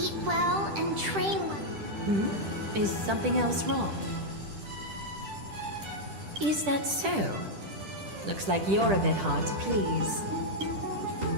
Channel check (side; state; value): left; late; 10 ms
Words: well and train well. Is something else wrong? Is that so? Looks like you're a bit hard to please.